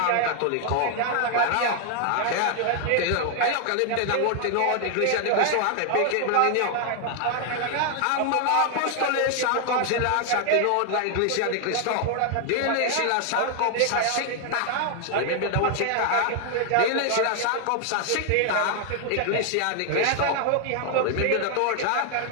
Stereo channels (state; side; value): different; both; correlation 0.00